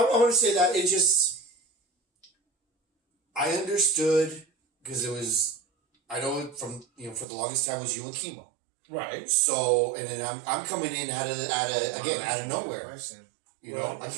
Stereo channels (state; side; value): drops out; left; at 7.2 s